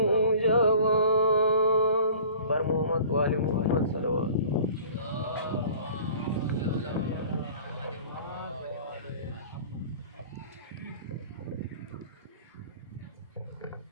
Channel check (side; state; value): both; inverted; correlation -0.46